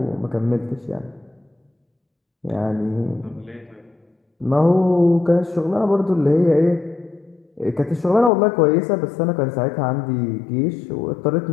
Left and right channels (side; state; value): right; drops out; at 8.3 s